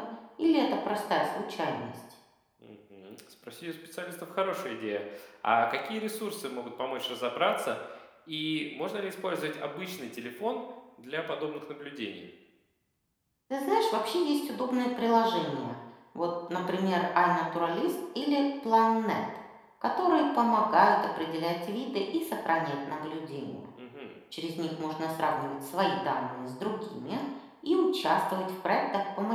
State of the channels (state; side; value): identical; both; correlation 1.00